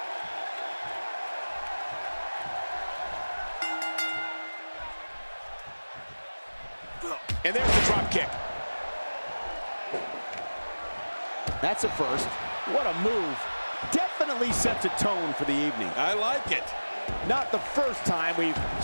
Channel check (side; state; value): both; inverted; correlation -1.00